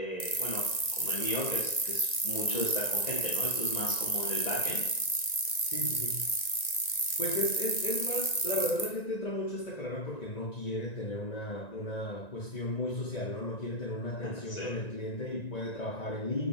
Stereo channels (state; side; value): late; right; 1.9 ms